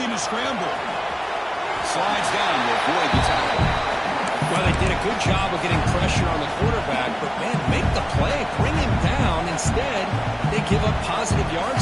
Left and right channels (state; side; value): identical; both; correlation 1.00